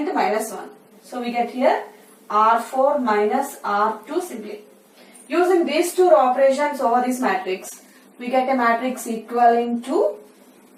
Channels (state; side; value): identical; both; correlation 1.00